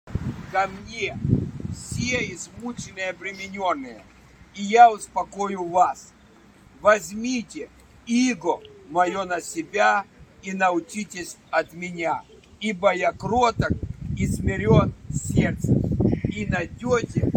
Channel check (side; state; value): both; identical; correlation 1.00